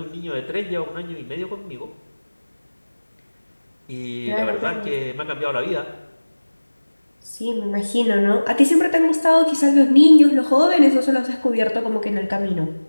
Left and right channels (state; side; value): inverted; both; correlation -1.00